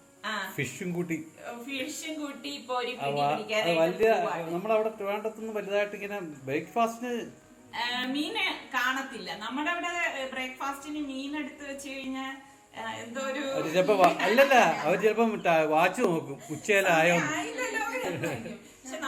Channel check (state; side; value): identical; both; correlation 1.00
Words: ഫിഷും കൂട്ടി വലിയ നമ്മളവിടെ ട്രിവാൻഡ്രത്തൊന്നും വലുതായിട്ട് ഇങ്ങനെ ബ്രേക്ക്ഫാസ്റ്റിന് മീന് കാണത്തില്ല. നമ്മുടെ അവിടെ ബ്രേക്ക്ഫാസ്റ്റിന് മീൻ എടുത്ത് വെച്ച് കഴിഞ്ഞാൽ എന്തോ ഒരു ചിലപ്പോ അല്ലല്ല, അവർ ചിലപ്പോ വാച്ച് നോക്കും ഉച്ചയിലായോ. പക്ഷെ